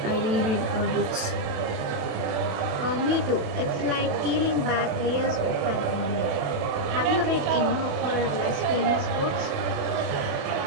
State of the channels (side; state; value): left; late; 28 ms